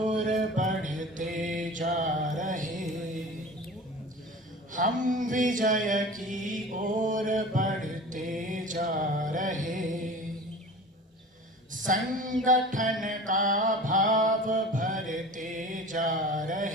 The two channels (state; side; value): normal; both; correlation 0.38